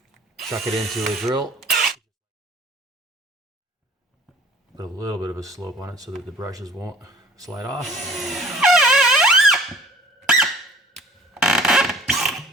chuck it into a drill, put a little bit of a slope on it so that the brushes won't slide off.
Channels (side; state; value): both; normal; correlation 0.51